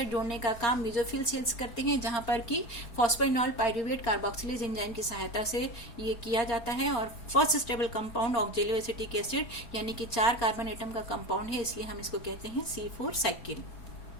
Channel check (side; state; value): right; late; 4.3 ms